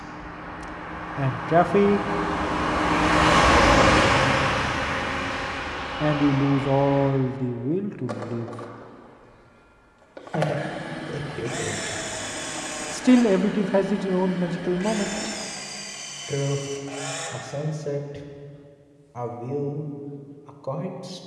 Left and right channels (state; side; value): identical; both; correlation 1.00